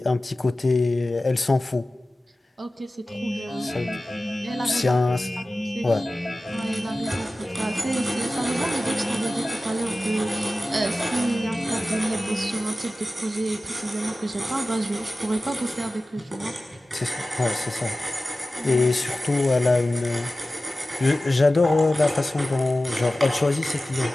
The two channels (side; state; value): both; normal; correlation 0.96